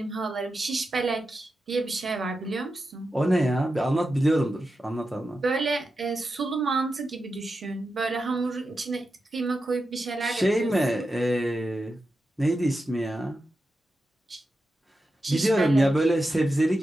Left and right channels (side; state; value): both; normal; correlation 0.90